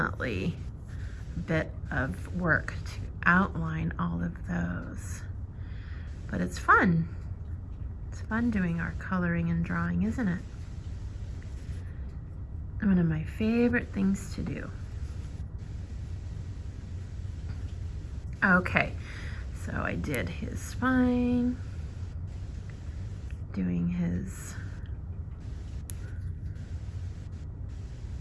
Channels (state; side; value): identical; both; correlation 1.00